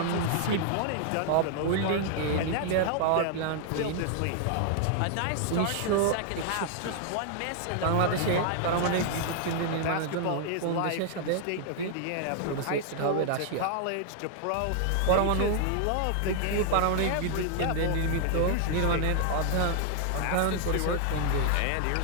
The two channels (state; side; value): different; both; correlation 0.00